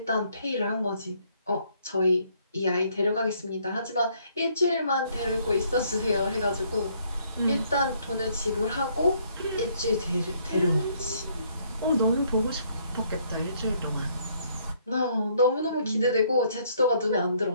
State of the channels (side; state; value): both; inverted; correlation -0.66